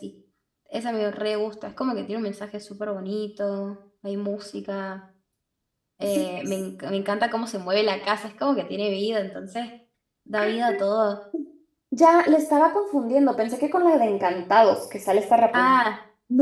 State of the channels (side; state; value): both; identical; correlation 1.00